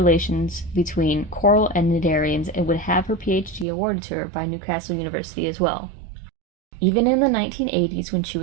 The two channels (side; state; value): left; drops out; at 3.7 s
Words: between coral and cnidarians and would have her PhD awarded to her by Newcastle University as well. Even in the 1980s, when she